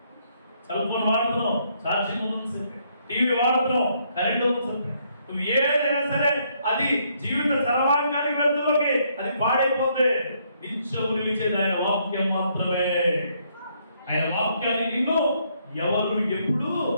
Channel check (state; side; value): inverted; both; correlation -0.71